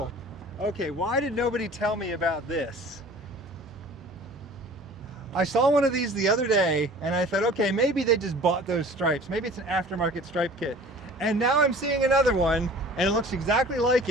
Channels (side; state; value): both; normal; correlation 0.45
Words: Okay, why did nobody tell me about this? I saw one of these the other day, and I thought, okay, maybe they just bought those stripes. Maybe it's an aftermarket stripe kit. And now I'm seeing another one, and it looks exactly like